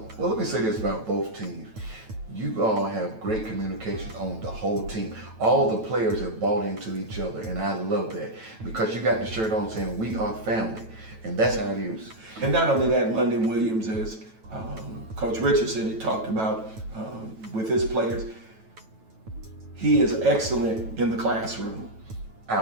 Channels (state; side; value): late; left; 9.1 ms